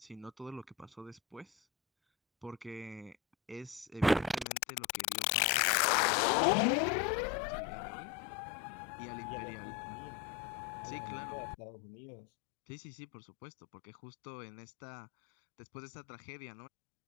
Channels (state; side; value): drops out; right; at 4.5 s